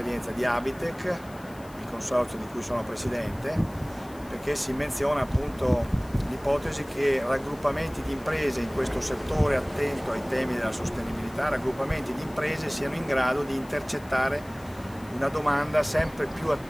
di Abitec, il consorzio di cui sono presidente, perché si menziona appunto l'ipotesi che raggruppamenti di imprese in questo settore attento ai temi della sostenibilità, raggruppamenti di imprese siano in grado di intercettare una domanda sempre più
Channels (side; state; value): left; noise; hiss, 24 dB below the sound